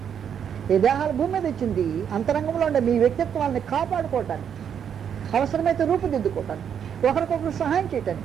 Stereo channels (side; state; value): left; quieter; 8.2 dB